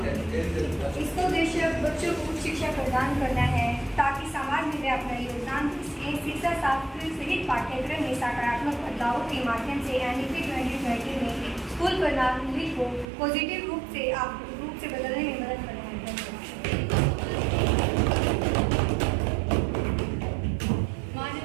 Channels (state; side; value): drops out; left; at 13.1 s